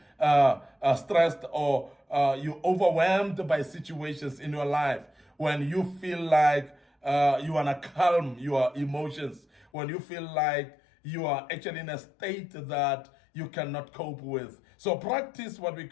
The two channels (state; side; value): drops out; right; at 9.7 s